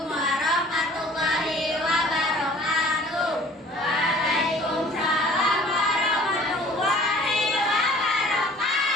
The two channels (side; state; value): both; normal; correlation 0.50